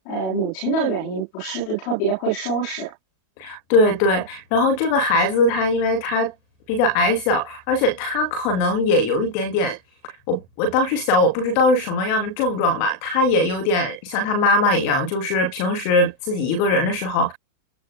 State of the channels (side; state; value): right; late; 37 ms